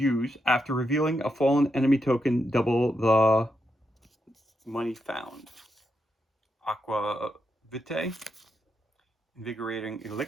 after revealing a fallen enemy token, double the money found. Aqua Vitae. Invigorating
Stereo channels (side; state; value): both; normal; correlation 0.83